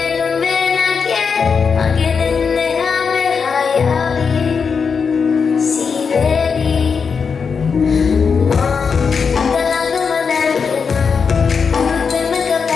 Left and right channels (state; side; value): quieter; right; 5.8 dB